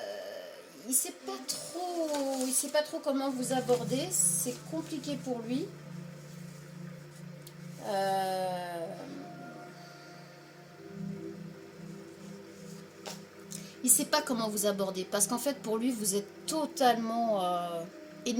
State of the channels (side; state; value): both; identical; correlation 1.00